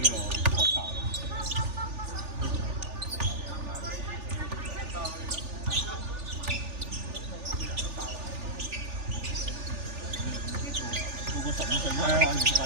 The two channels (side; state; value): left; late; 3.4 ms